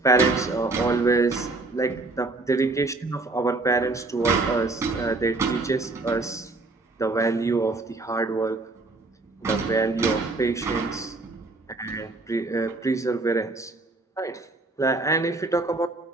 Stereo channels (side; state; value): left; quieter; 3.3 dB